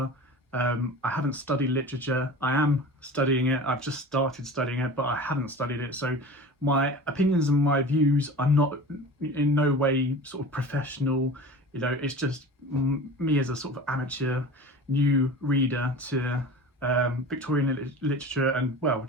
I haven't studied literature. I am studying it. I've just started studying it, but I haven't studied it. So my opinions and my views are not in no way sort of professional. You know, it's just me as a sort of amateur new reader to Victorian literature and, well,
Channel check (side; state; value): both; normal; correlation 0.36